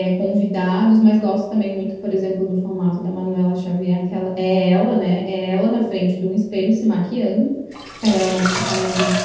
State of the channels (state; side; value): identical; both; correlation 1.00